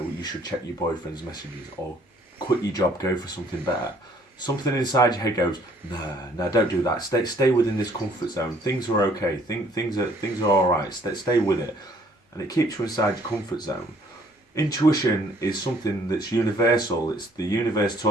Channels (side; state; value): both; normal; correlation 0.61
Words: you should check your boyfriend's messages or quit your job, go for something better, something inside your head goes, nah, don't do that. Stay within this comfort zone. Things are okay. Things are all right. Stay with it, and it keeps you inside your comfort zone. Intuition is something that's universal. It's the universe